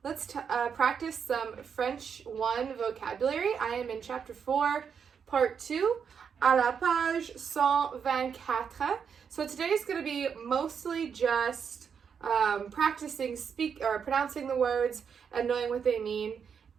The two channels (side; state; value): left; quieter; 6.9 dB